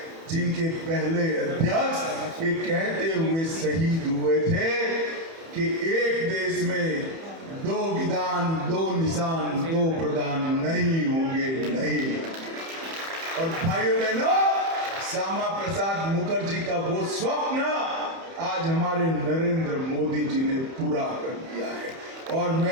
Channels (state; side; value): late; left; 30 ms